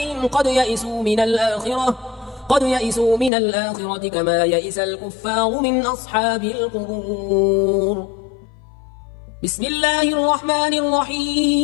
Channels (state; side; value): drops out; right; at 3.3 s